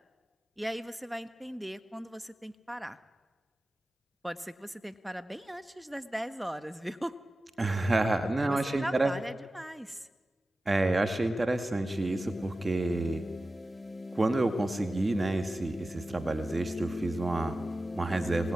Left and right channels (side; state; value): both; normal; correlation 0.95